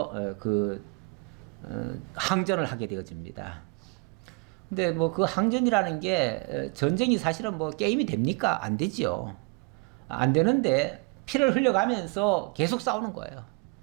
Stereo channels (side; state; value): left; quieter; 32.6 dB